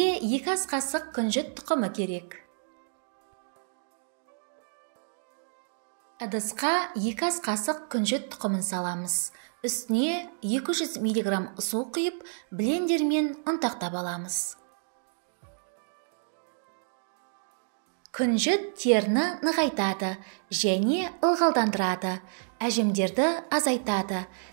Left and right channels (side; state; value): left; silent; digital silence